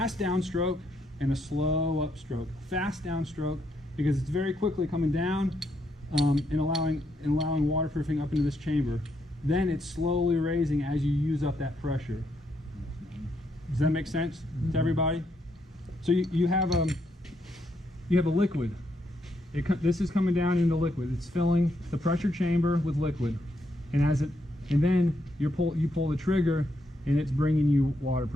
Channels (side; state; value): both; normal; correlation 0.77